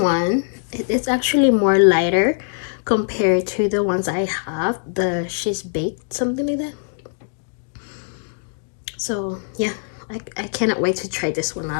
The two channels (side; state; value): right; silent; digital silence